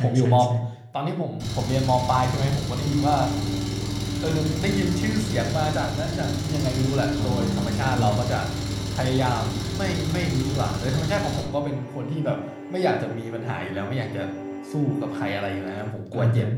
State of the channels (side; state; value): both; identical; correlation 1.00